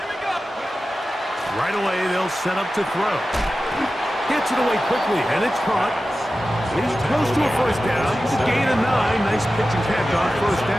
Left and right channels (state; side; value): normal; both; correlation 0.94